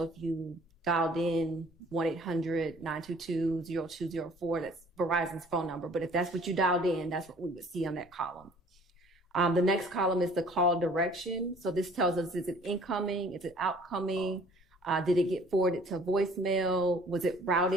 if you dialed in 1-800-922-0204, that's Verizon's phone number. But if that's what you dialed in, that's what we would see on that column. The next column is the call direction. So this tells us, is it incoming? Is it outcoming? Did it get forwarded to voicemail? Was it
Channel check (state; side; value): normal; both; correlation 0.54